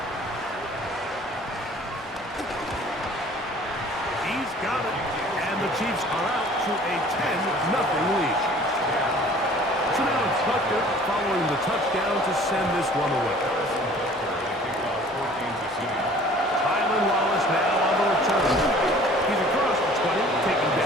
Got it. And the Chiefs are out to a 10-0 lead. So now it's Butker following the touchdown to send this one away. Tylan Wallace now on the return. He's across the 20, taken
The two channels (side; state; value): both; normal; correlation 0.50